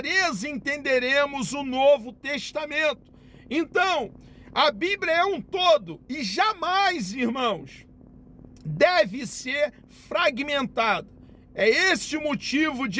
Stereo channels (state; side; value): identical; both; correlation 1.00